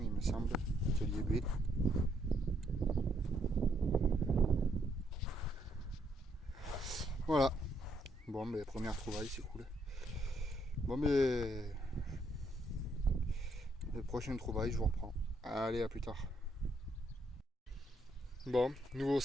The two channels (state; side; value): normal; both; correlation 0.73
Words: il me semble. Atelier B. Voilà. Bon, ben première trouvaille, c'est cool. Bon, ben le prochain trouvaille, je vous reprends. Allez, à plus tard. Bon, nouveau